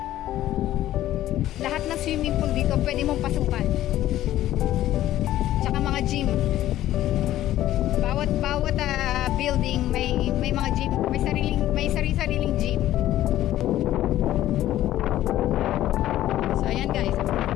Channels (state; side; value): quieter; right; 13.6 dB